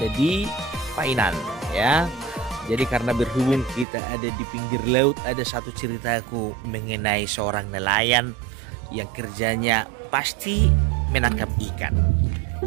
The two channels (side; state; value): left; drops out; at 3.9 s